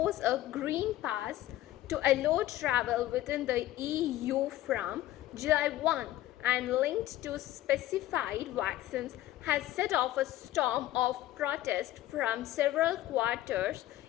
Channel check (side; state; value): right; quieter; 14.7 dB